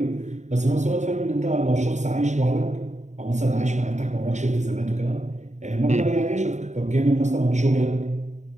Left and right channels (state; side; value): late; left; 0.34 ms